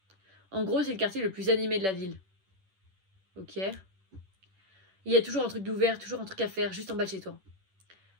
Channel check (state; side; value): late; left; 10 ms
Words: En gros, c'est le quartier le plus animé de la ville. Ok. Il y a toujours un truc d'ouvert, toujours un truc à faire, juste en bas de chez toi.